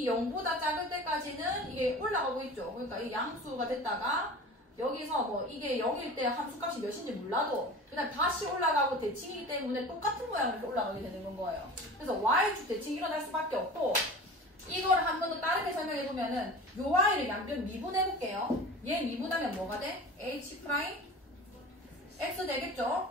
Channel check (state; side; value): normal; both; correlation 0.37